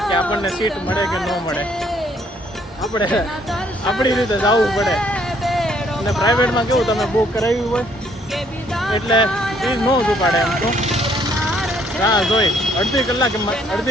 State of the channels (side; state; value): both; normal; correlation 0.66